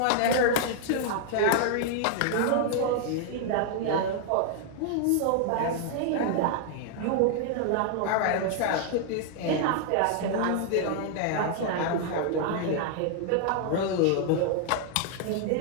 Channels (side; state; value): both; different; correlation 0.00